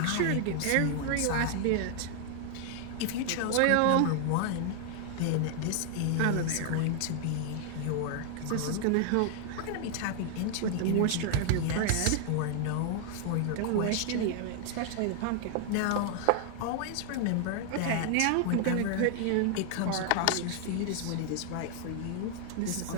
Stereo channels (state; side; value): different; both; correlation 0.00